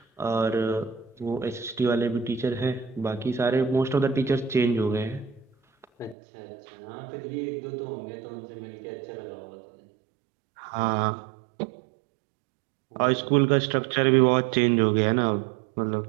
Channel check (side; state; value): left; drops out; at 6.2 s